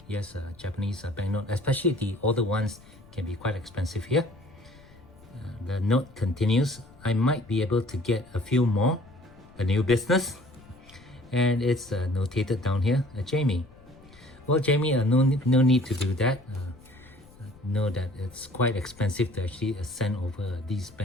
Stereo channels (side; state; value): left; noise; rumble, 24 dB below the sound